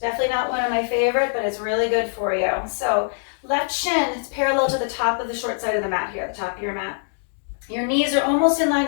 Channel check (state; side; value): silent; right; digital silence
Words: Definitely not one of my favorite, but it's really good for you. So left shin is parallel to the top of the short side of the mat here, the top of your mat. Your knees are almost in line